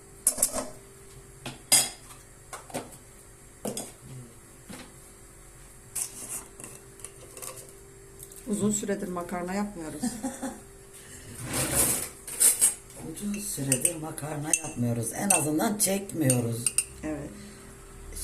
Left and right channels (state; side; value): identical; both; correlation 1.00